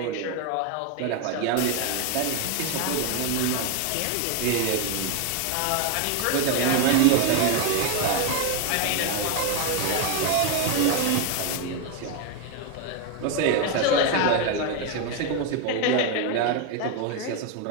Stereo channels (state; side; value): different; both; correlation 0.01